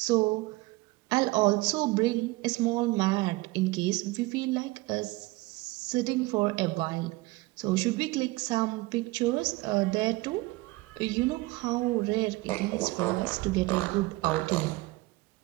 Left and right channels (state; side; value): quieter; left; 21.7 dB